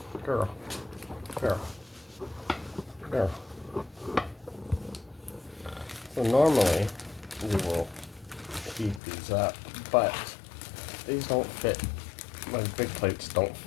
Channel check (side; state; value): right; drops out; at 9.0 s